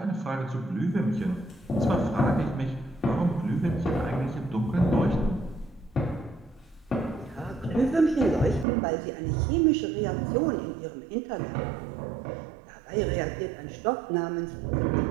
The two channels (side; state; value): left; drops out; at 8.7 s